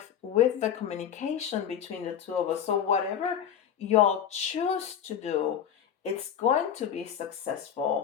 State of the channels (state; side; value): quieter; right; 9.0 dB